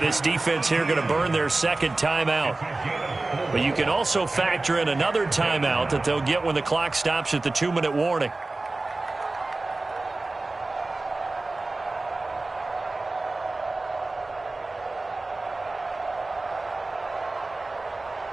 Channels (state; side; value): quieter; left; 3.2 dB